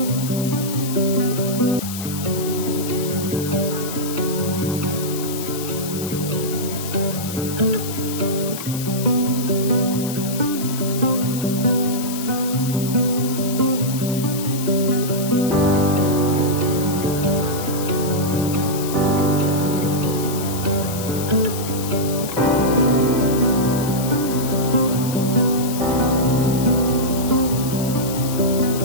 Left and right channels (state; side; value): noise; left; hiss, 9 dB below the sound